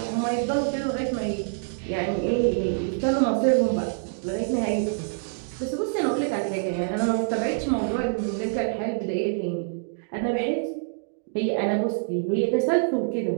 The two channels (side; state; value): left; silent; digital silence